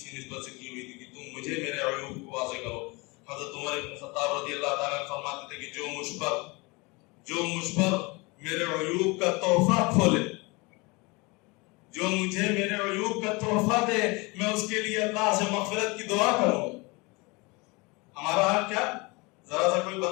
نسبت سے کی ہوئی تھی کہ تم مجھے میرے عیوب کو واضح کرو. حضرت عمر بن خطاب رضی اللہ تعالیٰ فرماتے تھے کہ جو مجھ پر میرے عیوب کا تحفہ کھولے، جو مجھے میرے عیوب کا تحفہ دے، میں اس کے لیے اللہ سے مغفرت کی دعا کروں گا. ہمارا حال کیا؟ ذرا سا کوئی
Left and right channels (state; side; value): quieter; right; 26.4 dB